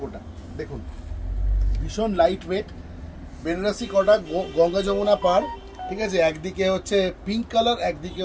দেখুন, ভীষণ লাইট ওয়েট বেনারসি কোটা, গঙ্গা যমুনা পার। ঠিক আছে, একদিকে হচ্ছে পিঙ্ক কালার, একদিকে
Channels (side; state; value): both; identical; correlation 1.00